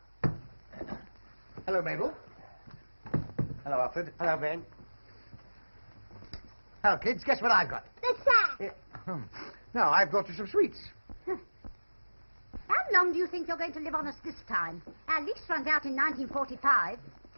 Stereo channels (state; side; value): inverted; both; correlation -1.00